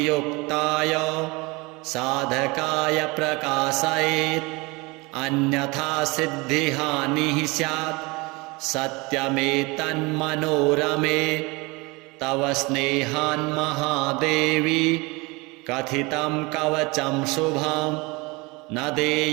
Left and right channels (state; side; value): quieter; left; 25.4 dB